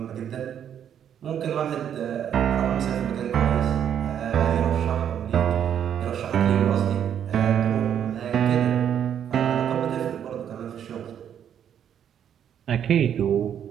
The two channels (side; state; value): left; quieter; 9.2 dB